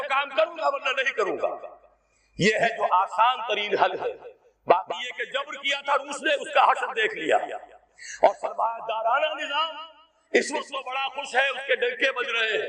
کام کروں گا ورنہ نہیں کروں گا. یہ ہے جو آسان ترین حل ہے. باقی یہ کہ جبر کیا تھا روس نے، اس کا حشر دیکھ لیا. اور سرمایہ دارانہ نظام اس وقت وہ بڑا خوش ہے، اس کے ڈنکے بج رہے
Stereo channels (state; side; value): identical; both; correlation 1.00